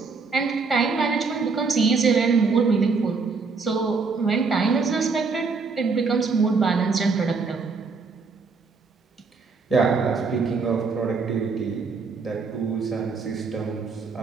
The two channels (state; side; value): quieter; left; 4.7 dB